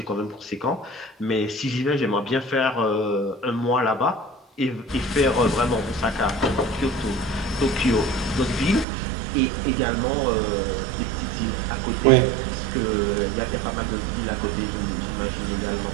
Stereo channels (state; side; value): drops out; left; at 8.8 s